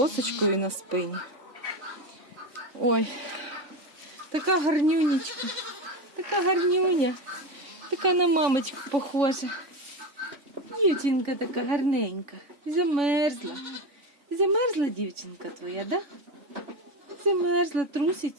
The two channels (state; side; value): late; left; 3.5 ms